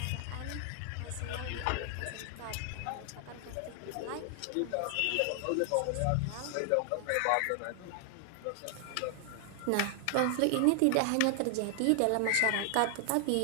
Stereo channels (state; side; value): different; both; correlation 0.00